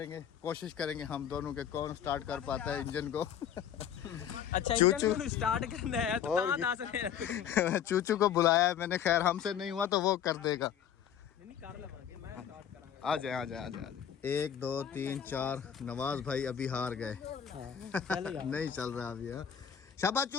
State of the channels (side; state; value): right; quieter; 8.9 dB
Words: कोशिश करेंगे हम दोनों के कौन स्टार्ट कर पाता है इंजन को। अच्छा चूचू स्टार्ट करना है तो और कहाँ से चूचू को बुलाया है मैंने, खैर हमसे नहीं हुआ तो वो कर देगा। नहीं कर लवांगे, मैं स्टार्ट करांगा। आ जाए आ जाए आ जाए। 1 2 3 4 नवाज भाई अभी हार गए। नहीं चल रहा अभी। हाँ शाबाश